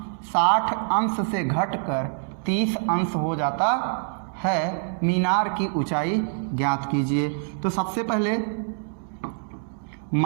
60 अंश से घटकर 30 अंश हो जाता है। मीनार की ऊंचाई ज्ञात कीजिए। तो सबसे पहले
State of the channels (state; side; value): silent; left; digital silence